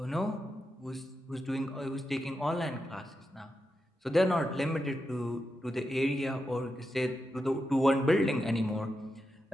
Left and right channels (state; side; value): normal; both; correlation 0.88